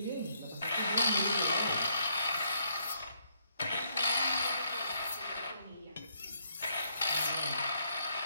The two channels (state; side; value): inverted; both; correlation -0.71